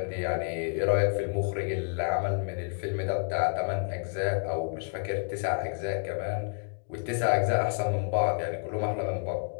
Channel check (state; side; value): silent; right; digital silence